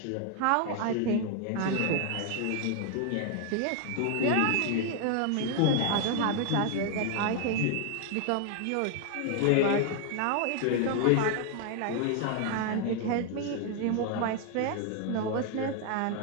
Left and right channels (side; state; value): both; different; correlation 0.00